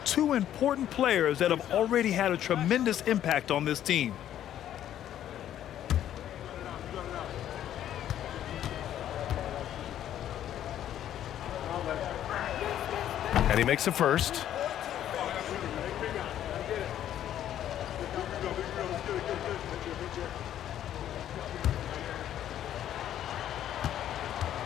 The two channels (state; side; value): quieter; right; 11.2 dB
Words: Two important players that have already had a tremendous impact on this team. And he makes a first.